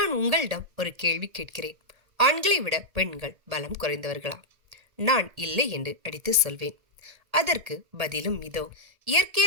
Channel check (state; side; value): late; left; 1.8 ms